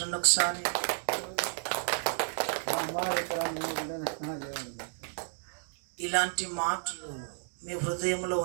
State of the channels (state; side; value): silent; left; digital silence